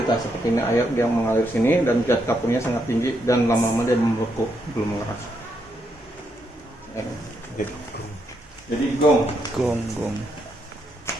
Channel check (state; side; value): normal; both; correlation 0.78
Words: lah seperti ini, air dia mengalir sini dan zat kapurnya sangat tinggi dan lama-lama dia membeku, belum mengeras. Jadi gong. Gong.